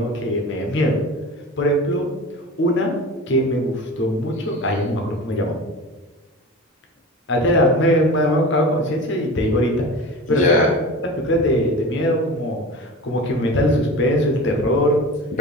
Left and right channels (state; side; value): normal; both; correlation 0.33